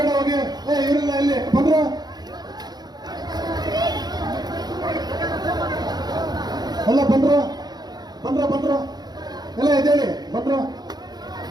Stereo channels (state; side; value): late; left; 0.20 ms